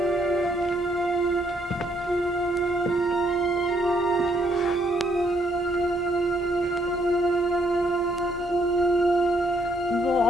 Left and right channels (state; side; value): normal; both; correlation 0.70